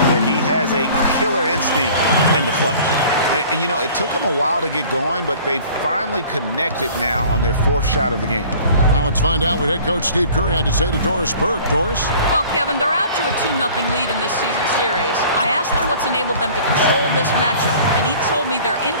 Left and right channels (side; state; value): both; inverted; correlation -0.48